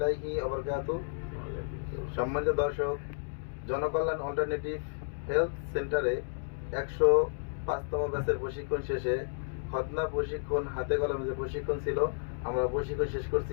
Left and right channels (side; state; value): right; silent; digital silence